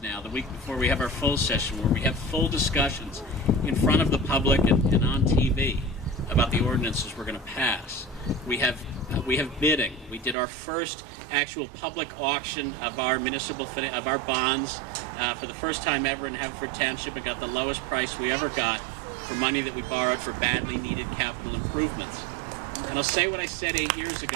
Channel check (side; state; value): left; drops out; at 10.4 s